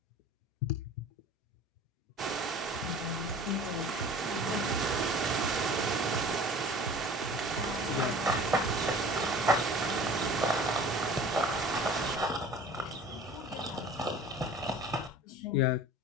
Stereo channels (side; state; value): both; normal; correlation 0.44